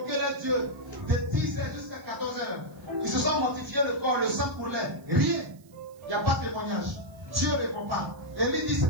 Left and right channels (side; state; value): right; noise; hiss, 29 dB below the sound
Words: leur Dieu de 10h jusqu'à 14h. Ils se sont mortifiés le corps, le sang pour l'air. Rien. Il n'y a pas de témoignage. Dieu ne répond pas. Élie dit